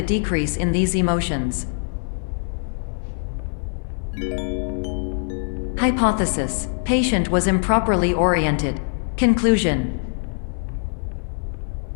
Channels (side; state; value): right; silent; 64 dB below the other